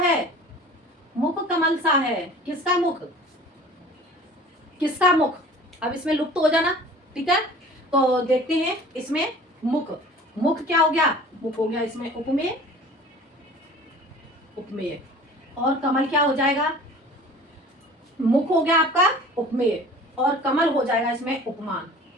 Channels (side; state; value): both; normal; correlation 0.45